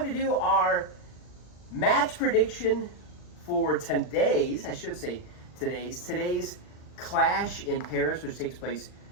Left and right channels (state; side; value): late; right; 39 ms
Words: to do our match prediction for today's Clash in Paris, which takes place,